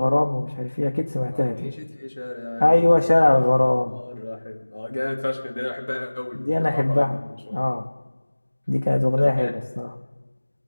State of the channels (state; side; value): inverted; both; correlation -1.00